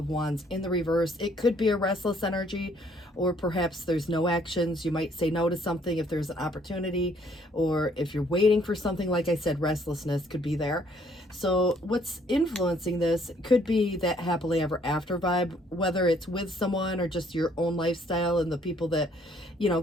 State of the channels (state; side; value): normal; both; correlation 0.64